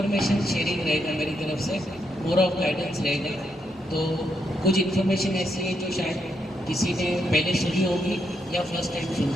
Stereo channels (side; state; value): both; normal; correlation 0.79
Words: शेयरिंग रहेगा मेरी तरफ से, मोर ऑफ गाइडेंस रहेगा। तो कुछ इन्फॉर्मेशन ऐसी है जो शायद किसी ने पहले सुनी होगी या फर्स्ट टाइम